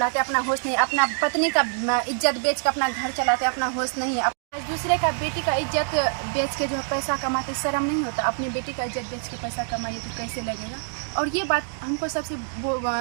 अपना होश नहीं। अपना पत्नी का इज्जत बेच के अपना घर चलाते, अपना होश नहीं। आज दूसरे का बेटी का इज्जत बेच के जो है पैसा कमाते, शर्म नहीं होता? अपनी बेटी का इज्जत बेच के पैसा कमाइए तो कैसे लगेगा? और ये बात हमको सबसे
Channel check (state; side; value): silent; left; 62 dB below the other